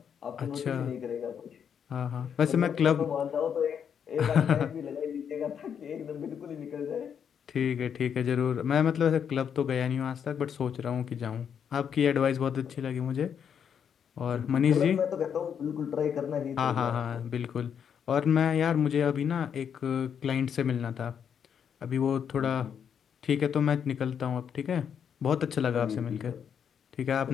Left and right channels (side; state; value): right; quieter; 7.8 dB